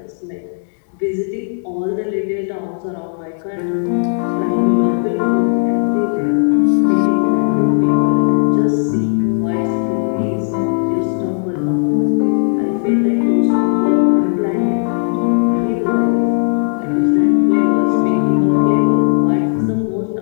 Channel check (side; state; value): right; silent; digital silence